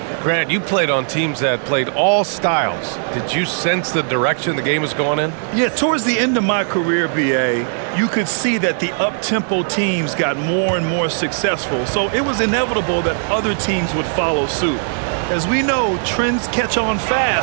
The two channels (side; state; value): left; silent; digital silence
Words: Grant, you played on teams that played all styles. Did you sense the direction the game was going in? Yeah, towards the end of my career, B.A., you could see that the up-tempo teams got more and more successful. So it was inevitable that other teams would follow suit. As we know, trends catch on